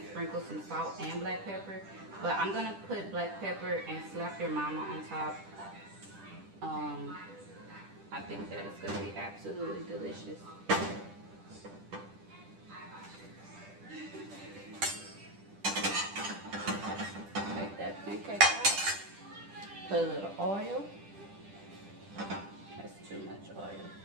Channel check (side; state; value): left; late; 10 ms